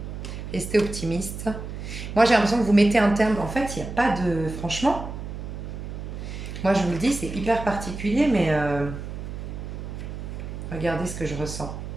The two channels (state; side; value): noise; right; hum, 8 dB below the sound